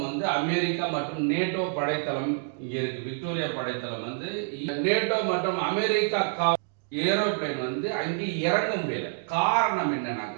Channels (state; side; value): silent; left; digital silence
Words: அமெரிக்கா மற்றும் நேட்டோ படைத்தளம் இங்க இருக்கு. விக்டோரியா படைத்தளம் நேட்டோ மற்றும் அமெரிக்கா ஏரோப்ளேன் அங்கே இறங்க முடியல. காரணம்